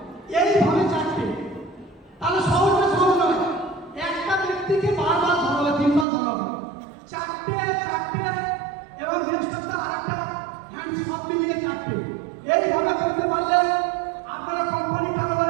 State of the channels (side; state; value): left; drops out; at 6.1 s